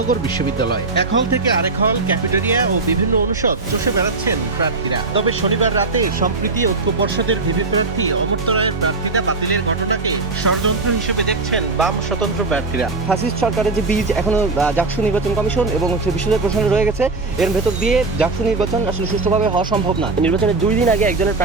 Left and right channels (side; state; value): left; quieter; 3.7 dB